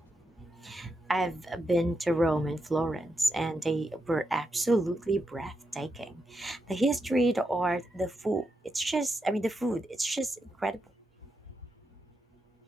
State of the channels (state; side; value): normal; both; correlation 0.85